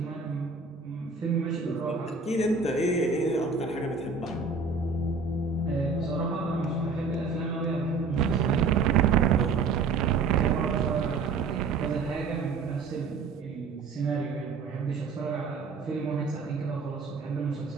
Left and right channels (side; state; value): left; quieter; 4.6 dB